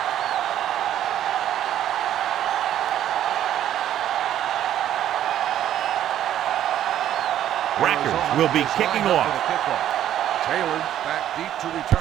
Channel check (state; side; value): quieter; left; 11.4 dB